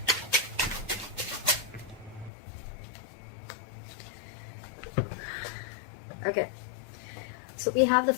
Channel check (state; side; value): drops out; right; at 2.3 s